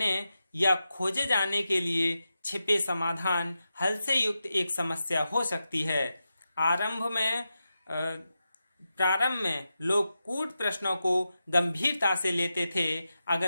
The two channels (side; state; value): both; inverted; correlation -0.90